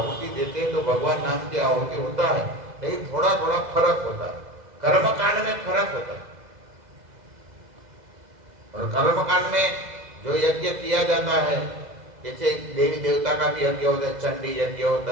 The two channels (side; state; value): left; late; 2.0 ms